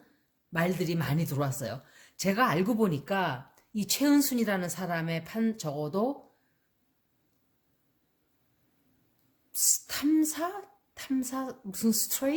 말들이 많이 들어왔어요. 제가 알고 보니까 이 최은순이라는 사람의 적어도 탐사 무슨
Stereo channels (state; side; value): identical; both; correlation 1.00